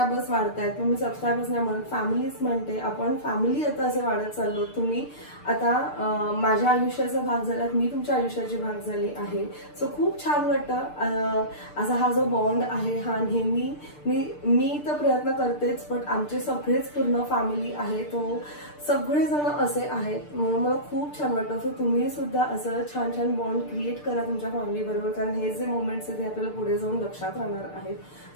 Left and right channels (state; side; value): late; right; 6.7 ms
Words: वाढत आहेत. मी सबस्क्रायबर्स नाही म्हणत, फॅमिलीच म्हणते. आपण फॅमिली आता असे वाढत चाललो. तुम्ही आता माझ्या आयुष्याचा भाग झालात, मी तुमच्या आयुष्याची भाग झाली आहे. सो खूप छान वाटतं. असा हा जो बॉन्ड आहे हा नेहमी मी तर प्रयत्न करतेच, पण आमचे सगळेच पूर्ण फॅमिली आहे, तो सगळेजण असे आहेत. म्हणून मला खूप छान वाटतं. सो तुम्ही सुद्धा असं छान छान बॉन्ड क्रिएट करा तुमच्या फॅमिली बरोबर, कारण हे जे मोमेंट्स आहेत ते आपल्याला पुढे जाऊन लक्षात राहणार आहेत.